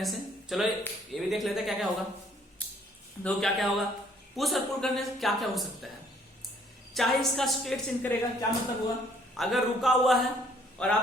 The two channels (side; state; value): both; normal; correlation 0.61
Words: से। चलो ये भी देख लेते हैं क्या क्या होगा। दो क्या क्या होगा, पुश और पुल करने से क्या क्या हो सकता है। चाहे इसका स्टेट चेंज करेगा, क्या मतलब हुआ, अगर रुका हुआ है और